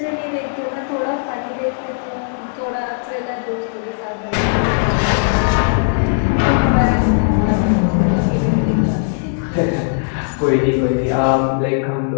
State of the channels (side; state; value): right; silent; 63 dB below the other